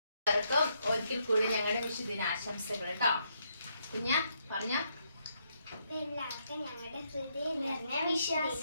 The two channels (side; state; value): both; inverted; correlation -0.76